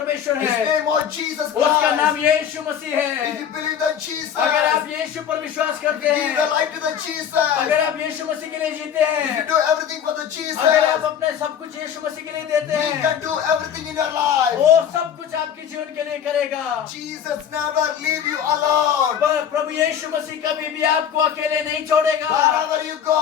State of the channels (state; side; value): quieter; right; 8.7 dB